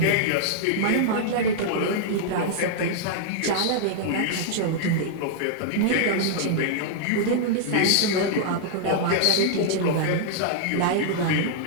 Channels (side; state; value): both; different; correlation -0.01